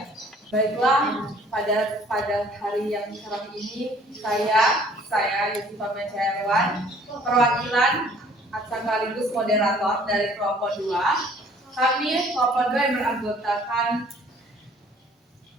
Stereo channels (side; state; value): both; normal; correlation 0.56